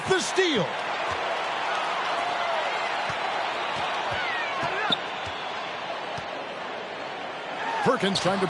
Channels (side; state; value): both; identical; correlation 1.00